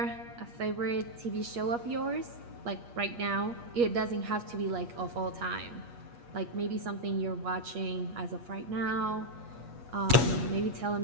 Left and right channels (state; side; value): late; left; 8.4 ms